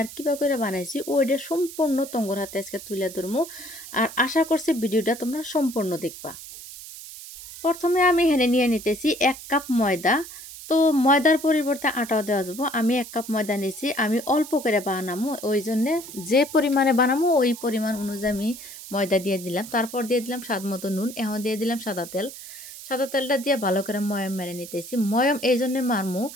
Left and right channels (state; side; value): noise; right; hiss, 14 dB below the sound